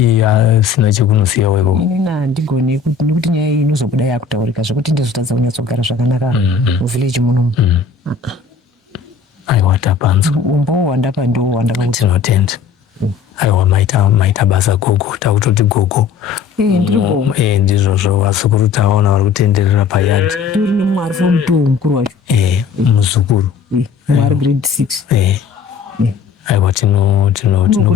sina chekunosiya weko? Inini handigoni nekuti nyaya iyi inozobuda yakutaurika zvokuti ndizotadza kunyatsogara zvakanaka muvhileji munomu. Aiwa tapanzwa umbowo wandapa ndo wandakakuti tinotenda. Aiwa maita basa gogo, takutoti gogo ndiri gogo ndizvozvo vasukuru tavaona vari kutenderera payadi. Tori nemumwe ari form 2 mukuru wacho muzukuru mumwe ari grade 6. Aiwa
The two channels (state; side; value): quieter; right; 6.0 dB